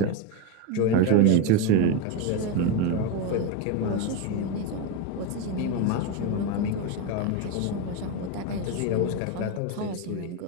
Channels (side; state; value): both; different; correlation 0.04